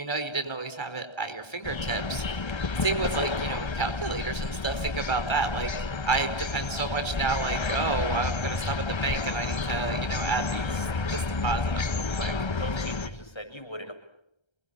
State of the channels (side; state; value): right; late; 1.3 ms